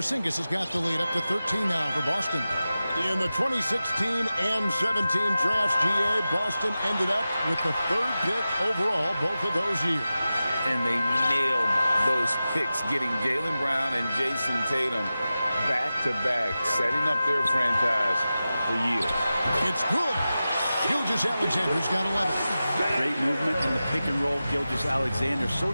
has got the lead up to 13 now for Boston. In the 2016 and 17 drafts, GA, Boston ended up with the 3rd pick overall both of those years. And they nailed those picks, getting Jaylen Brown and Jason Tatum back-to-back, setting up their franchise for years. It's good. Gilgeous-Alexander's got 11. Great movement in the pick and roll. Gilgeous-Alexander so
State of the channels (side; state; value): both; inverted; correlation -0.94